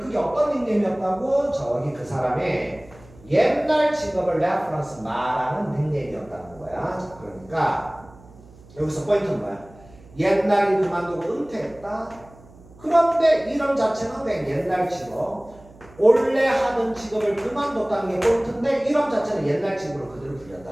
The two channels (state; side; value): noise; right; hum, 23 dB below the sound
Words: 어떤 닉네임이었다고? 저기 그 사람의 옛날 직업을 레퍼런스 말하는 닉네임이었다는 거야. 그러니까 여기서 포인트는 뭐야? 옛날에 그만두고 은퇴했다. 그런데 이름 자체는 그냥 옛날 직업, 원래 하던 직업을 그만뒀다는 게 포인트인데 이름 자체는 옛날 직업으로 그대로